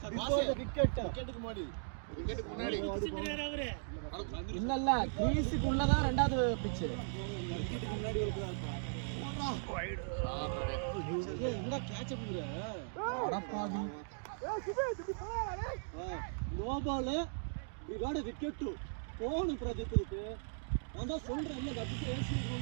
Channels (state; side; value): silent; left; digital silence